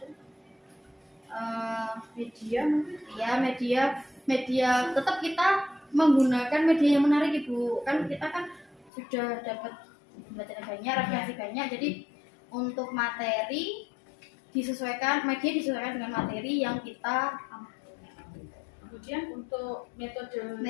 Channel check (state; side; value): drops out; right; at 8.9 s